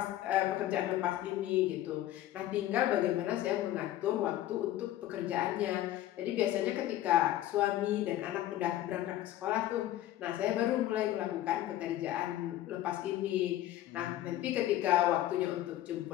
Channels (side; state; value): right; quieter; 13.7 dB